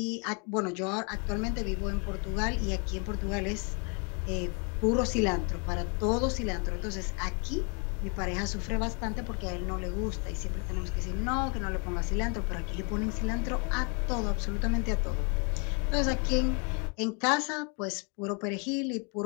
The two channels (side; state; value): right; quieter; 35.7 dB